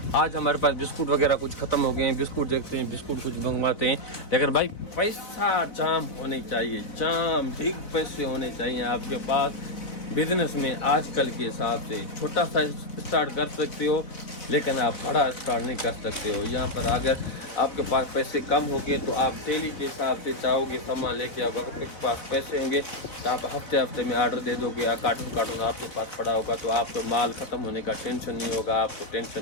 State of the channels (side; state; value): right; late; 4.0 ms